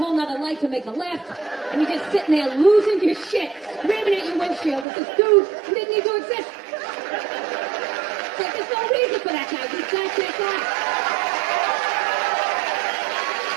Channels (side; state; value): left; drops out; at 4.9 s